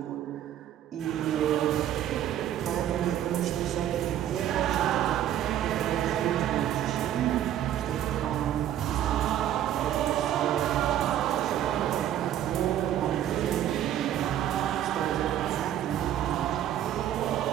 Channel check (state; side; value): quieter; left; 11.3 dB